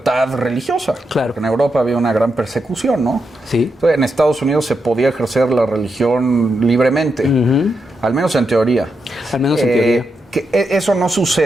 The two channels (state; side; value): normal; both; correlation 0.85